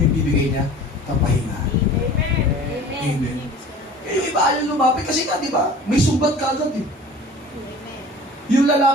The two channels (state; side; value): normal; both; correlation 0.44